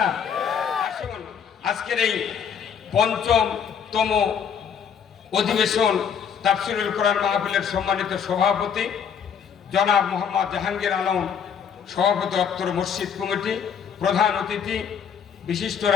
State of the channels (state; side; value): quieter; right; 7.4 dB